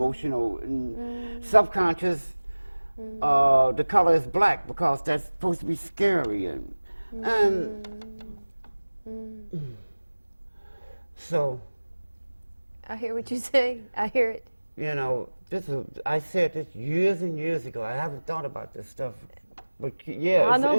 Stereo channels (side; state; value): both; inverted; correlation -1.00